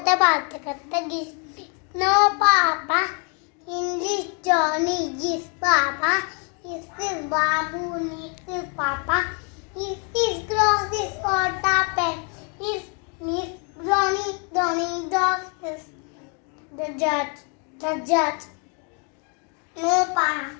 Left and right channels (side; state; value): right; quieter; 37.1 dB